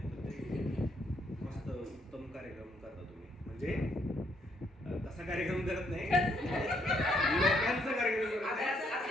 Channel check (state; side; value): normal; both; correlation 0.72